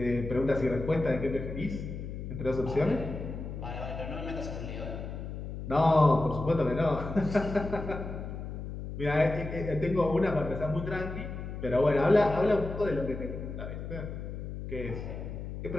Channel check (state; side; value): noise; left; hum, 7 dB below the sound